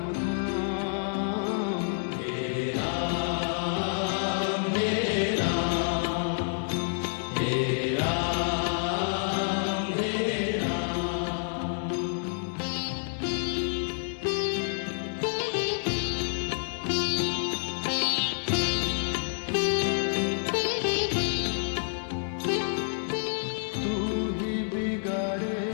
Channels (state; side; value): silent; right; digital silence